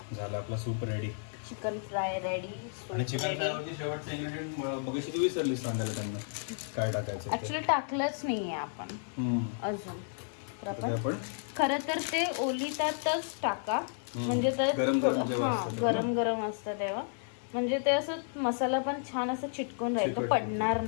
झालं आपला soup ready. Chicken fry ready. आणि चिकन फ्राय वरती शेवटचं इन्ग्रेडियंट मगाशी तू विसरलीस सांगायला त्यांना काय टाकायचं. ऍक्च्युली टाकलंच नाहीये आपण अजून. तर आपण खरं तर ते ओलितातच टाका, म्हणजे ते गरम गरम असतं तेव्हा, म्हणजे ते असं मसाला पण छान असं चिटकून राहील, तो पडणार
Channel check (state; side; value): silent; right; 56 dB below the other